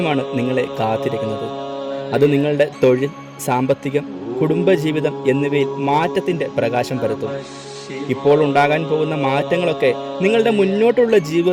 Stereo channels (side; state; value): both; identical; correlation 1.00